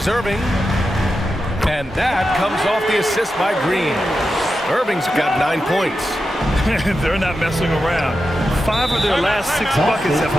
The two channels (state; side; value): normal; both; correlation 0.90